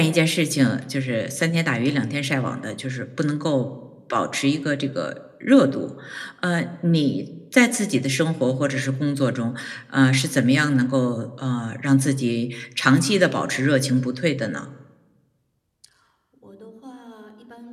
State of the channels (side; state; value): both; identical; correlation 1.00